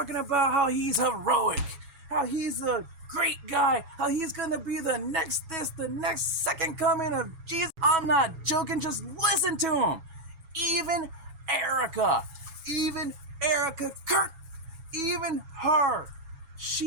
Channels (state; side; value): late; left; 7.2 ms